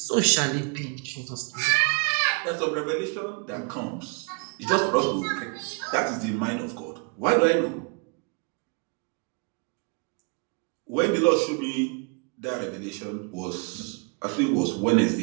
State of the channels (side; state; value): left; quieter; 33.4 dB